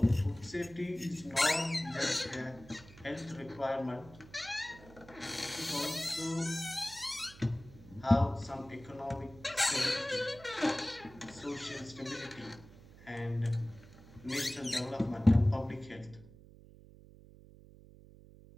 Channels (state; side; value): noise; right; hum, 20 dB below the sound